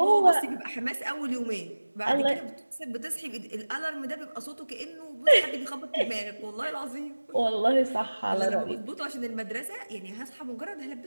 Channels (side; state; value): both; inverted; correlation -1.00